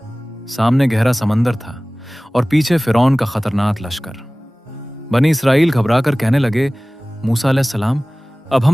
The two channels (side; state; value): both; normal; correlation 0.98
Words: सामने गहरा समंदर था और पीछे फिरौन का खतरनाक लश्कर। बनी इसराइल घबराकर कहने लगे, मूसा अलैहिस्सलाम, अब